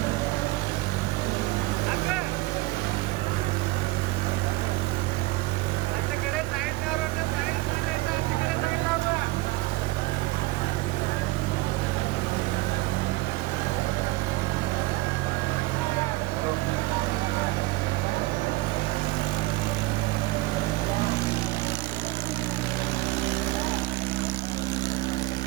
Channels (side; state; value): left; quieter; 20.9 dB